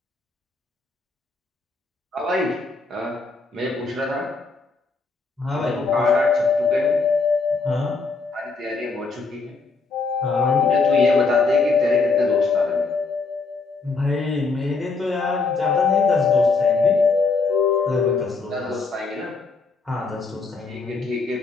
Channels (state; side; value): quieter; right; 4.3 dB